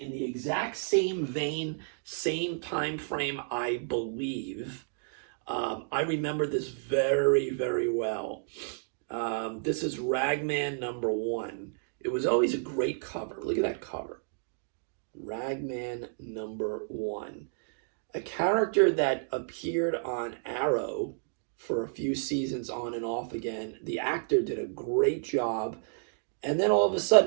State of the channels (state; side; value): silent; left; digital silence